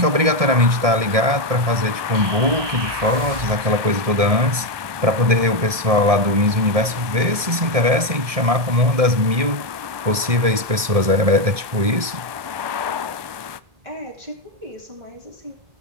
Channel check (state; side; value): late; left; 1.7 ms